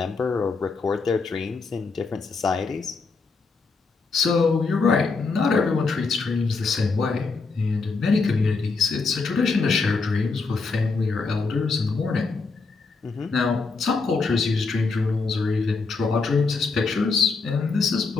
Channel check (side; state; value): right; quieter; 4.3 dB